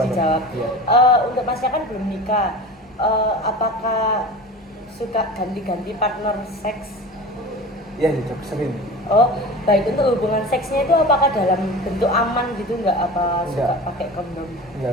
dijawab. Iya. Untuk Masnya kan belum nikah. Apakah suka ganti-ganti partner seks? Iya gitu, sering. Oh, baik. Untuk hubungan seksnya itu apakah dalam bentuk aman gitu nggak? Apa suka Enggak. pakai kondom?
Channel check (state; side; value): normal; both; correlation 0.34